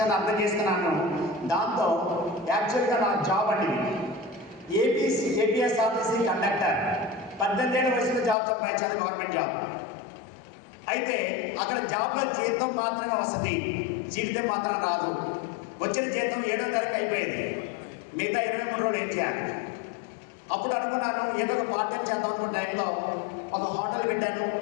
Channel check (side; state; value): right; drops out; at 8.3 s